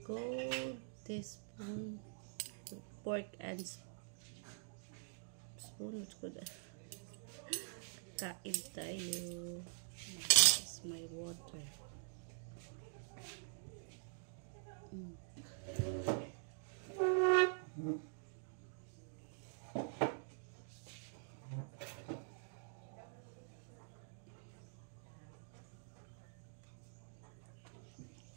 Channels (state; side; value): silent; left; digital silence